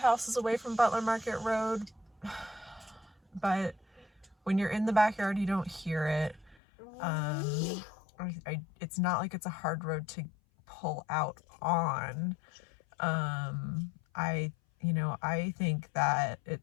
away from Butler Market Road, but when you're in the backyard, you don't hear it. It's not like it's a hard road to pull out on. I think that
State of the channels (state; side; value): drops out; right; at 6.6 s